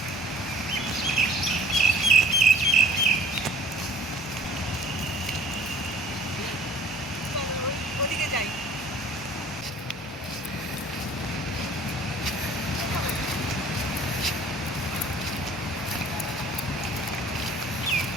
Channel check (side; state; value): both; normal; correlation 0.52